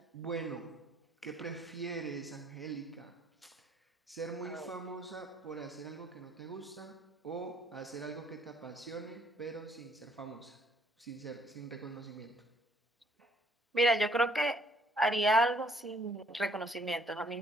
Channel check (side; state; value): both; normal; correlation 0.63